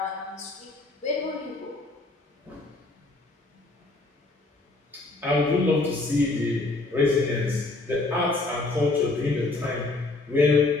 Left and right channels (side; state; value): right; quieter; 3.2 dB